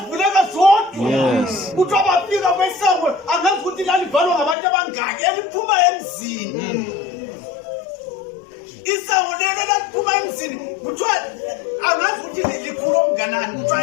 zodwa. Yes. Kuthi abafika kwesango angazi ukuthi lalivalwa ngabantu abangaki eliphuma emzini. Isango lelo laphuma emzini kuthiwa angazi ukuthi likhulu okunganani kuthiwa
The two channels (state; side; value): drops out; right; at 4.5 s